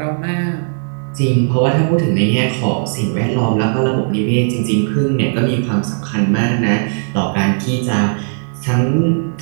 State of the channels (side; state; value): left; silent; 62 dB below the other